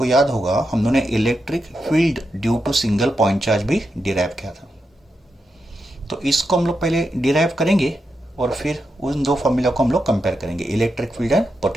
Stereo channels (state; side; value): normal; both; correlation 0.86